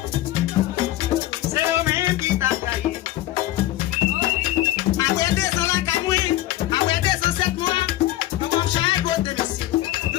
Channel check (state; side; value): quieter; right; 15.1 dB